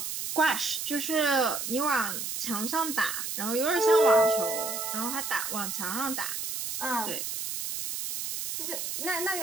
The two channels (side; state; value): right; noise; hiss, 4 dB below the sound